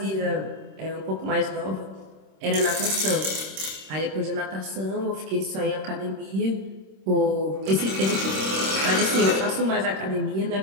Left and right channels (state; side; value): late; left; 26 ms